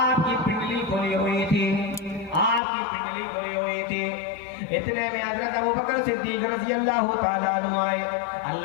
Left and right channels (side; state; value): right; drops out; at 2.6 s